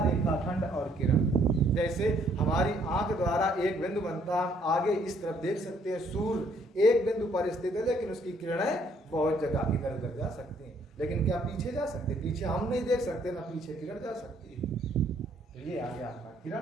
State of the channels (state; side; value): normal; both; correlation 0.66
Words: रेखाखंड और किरण। जैसे हमारी आंख द्वारा एक बिंदु बनता है, आगे इस तरफ देख सकते हैं, सूर्य एक बिंदु पर स्थित है, लेकिन उसकी किरणें बहुत जगह इधर उधर जा सकती हैं, लेकिन क्या पीछे जा सकते, पीछे हम नहीं देख सकते, ना पीछे किरण जा सकती है। तो ये आ गया आपका